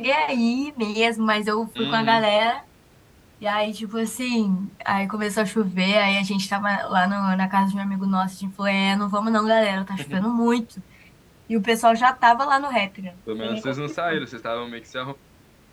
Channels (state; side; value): identical; both; correlation 1.00